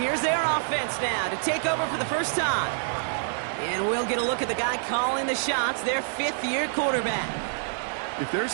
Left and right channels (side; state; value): left; silent; 60 dB below the other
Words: their offense now to take over for the first time. And we'll get a look at the guy calling the shots, their 5th-year quarterback. If there's